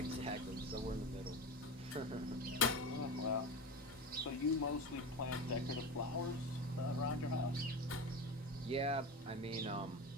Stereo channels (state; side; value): normal; both; correlation 0.25